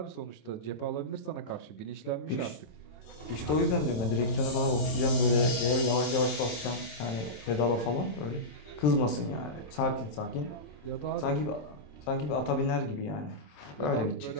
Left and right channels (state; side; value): late; right; 27 ms